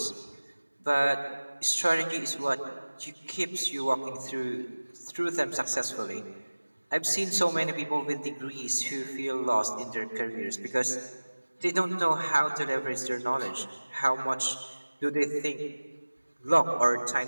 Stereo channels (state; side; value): inverted; both; correlation -1.00